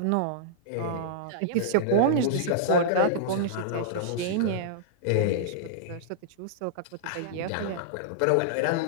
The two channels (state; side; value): different; both; correlation -0.02